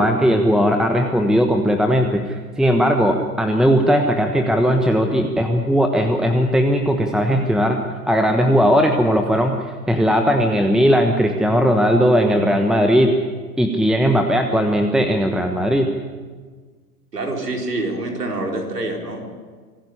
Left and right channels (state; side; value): normal; both; correlation 0.75